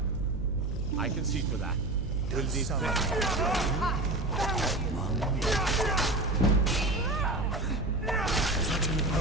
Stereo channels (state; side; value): noise; right; hum, 3 dB below the sound